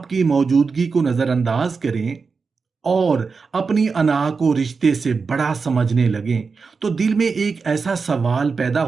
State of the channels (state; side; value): quieter; left; 4.9 dB